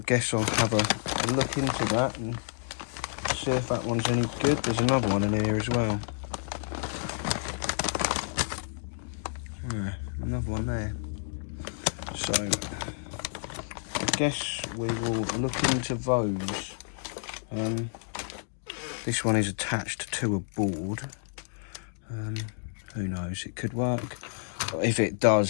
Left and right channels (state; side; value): silent; right; digital silence